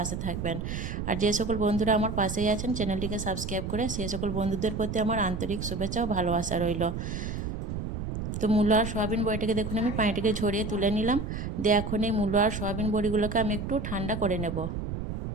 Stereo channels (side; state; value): right; noise; rumble, 5 dB below the sound